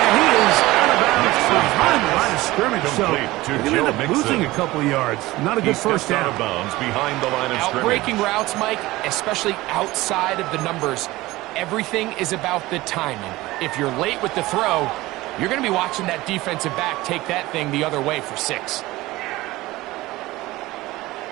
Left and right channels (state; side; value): quieter; left; 18.8 dB